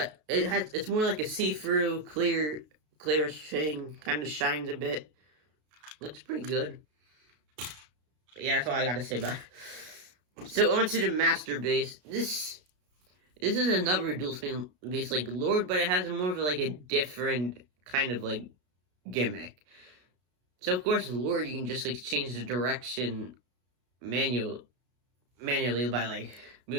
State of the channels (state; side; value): late; left; 33 ms